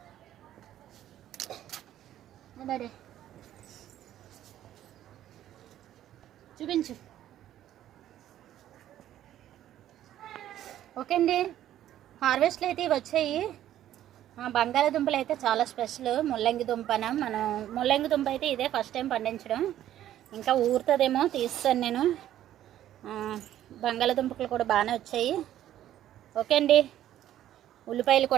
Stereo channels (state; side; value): quieter; left; 12.2 dB